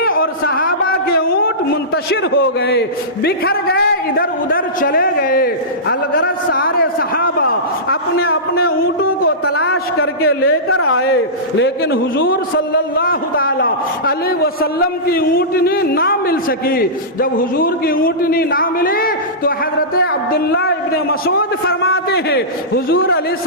اور صحابہ کے اونٹ منتشر ہو گئے، بکھر گئے، ادھر ادھر چلے گئے۔ الغرض سارے صحابہ اپنے اپنے اونٹوں کو تلاش کر کے لے کر آئے، لیکن حضور صلی اللہ تعالی علیہ وسلم کی اونٹنی نہ مل سکی۔ جب حضور کی اونٹنی نہ ملی تو حضرت عبداللہ ابن مسعود فرماتے ہیں حضور علیہ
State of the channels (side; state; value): both; normal; correlation -0.18